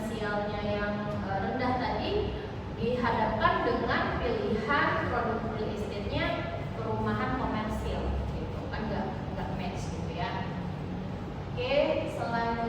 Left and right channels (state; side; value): identical; both; correlation 1.00